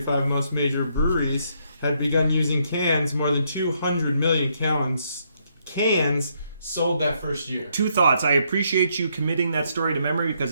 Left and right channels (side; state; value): both; inverted; correlation -0.74